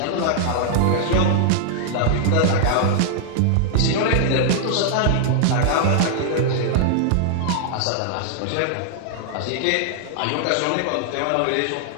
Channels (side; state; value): both; different; correlation -0.01